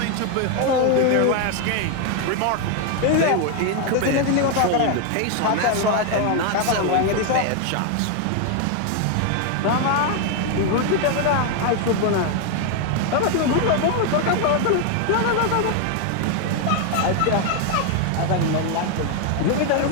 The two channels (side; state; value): both; different; correlation 0.01